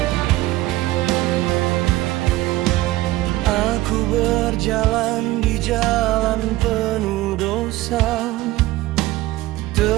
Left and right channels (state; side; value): quieter; left; 17.2 dB